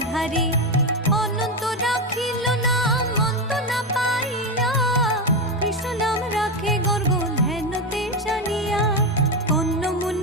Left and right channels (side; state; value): both; normal; correlation 0.12